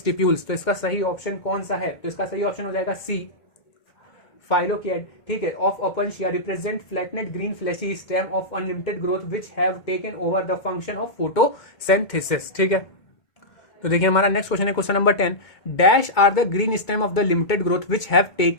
तो इसका सही ऑप्शन कौन सा है? तो इसका सही ऑप्शन हो जाएगा सी, फाइलोकिएड। ठीक है, of Opuntia represent flattened green fleshy stem of unlimited growth which have taken over the function of photosynthesis. ठीक है, तो देखिए हमारा नेक्स्ट क्वेश्चन है question number 10, dash are the green stem of the limited growth which have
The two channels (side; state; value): right; late; 2.2 ms